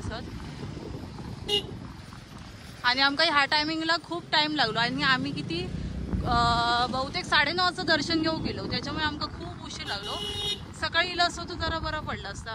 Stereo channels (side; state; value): both; identical; correlation 1.00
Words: आणि आमका ह्या टायमिंगला खूप टाइम लागलो आणि आम्ही किती बहुतेक 9:30 दर्शन घेऊ गेलो. त्याच्यामुळे आमका खूप उशीर लागलो. सकाळी इला असतो तर जरा बरा पडला